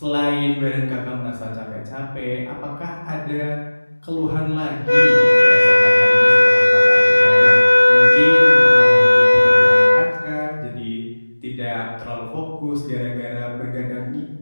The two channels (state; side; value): inverted; both; correlation -1.00